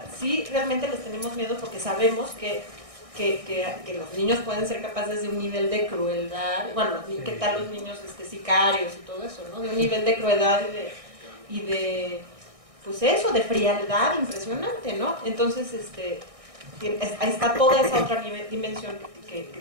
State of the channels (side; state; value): left; late; 1.6 ms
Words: sí realmente les tenemos miedo porque sabemos que los niños pueden ser capaces de un nivel de crueldad, bueno, ¿qué tal los niños sicarios y todo eso, ¿no? De un nivel de crueldad y de pues eso, de frialdad impresionante, ¿no? Entonces, ahí está toda esa otra dimensión